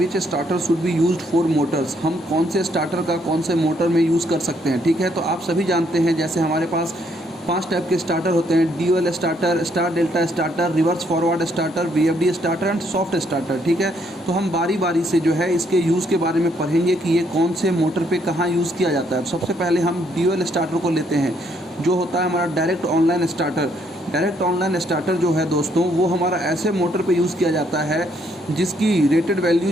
starter should be used for motors. हम कौन से स्टार्टर का कौन से मोटर में यूज़ कर सकते हैं। ठीक है, तो आप सभी जानते हैं जैसे हमारे पास 5 टाइप के स्टार्टर होते हैं, dual starter, star delta starter, reverse forward starter, VFD starter and soft starter. ठीक है, तो हम बारी बारी से जो है इसके यूज़ के बारे में पढ़ेंगे कि ये कौन से मोटर पे कहाँ यूज़ किया जाता है। सबसे पहले हम ड्यूअल स्टार्टर को लेते हैं, जो होता है हमारा direct online starter. Direct online starter जो है दोस्तों, वो हमारा ऐसे मोटर पे यूज़ किया जाता है जिसकी रेटेड वैल्यू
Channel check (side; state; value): both; normal; correlation 0.70